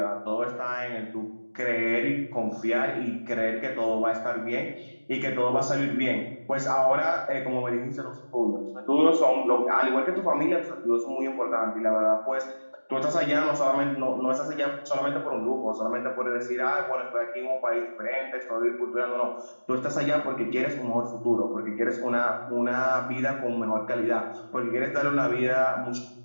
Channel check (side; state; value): both; inverted; correlation -1.00